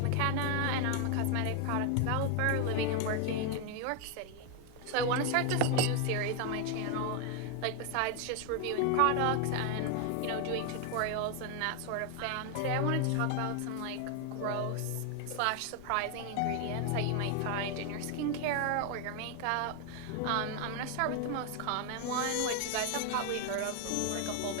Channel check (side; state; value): both; different; correlation 0.01